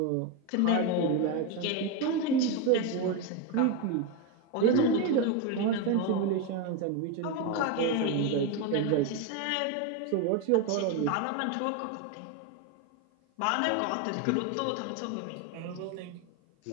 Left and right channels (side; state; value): both; different; correlation 0.03